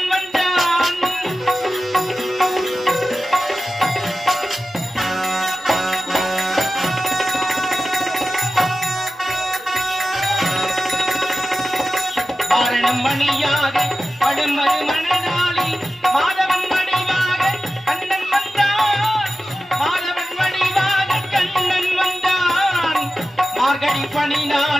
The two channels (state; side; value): normal; both; correlation 0.93